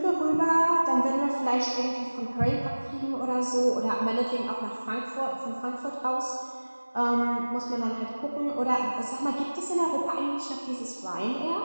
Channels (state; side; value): inverted; both; correlation -1.00